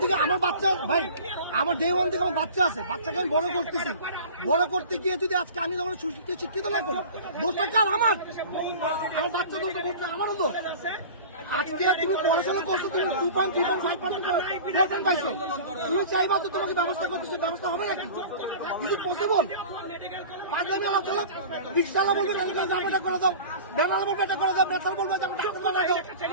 থেকে আমার বাচ্চা, ভাই আমার ডে ওয়ান থেকে আমার বাচ্চা আছে, বাচ্চাকে আমি বড় করতেছি, বড় করতে গিয়ে যদি আজকে আমি যখন শিক্ষিত না করি, দোষটা কার? আমার বাচ্চা দোষ, আমারও দোষ। আজকে তুমি পড়াশোনা করছো, তুমি 2.3.5% পাইছো, তুমি চাইবা তো তোমাকে ব্যবস্থা করতেছো, ব্যবস্থা হবে নাকি? Is it possible? পাঁচলামি আলাপ চলো, রিক্সাওয়ালা বলবে এটা করে দাও, বেলাল বলবে এটা করে দাও, বেতাল বলবে যে ডাক্তার বানাই দাও।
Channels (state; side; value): inverted; both; correlation -0.38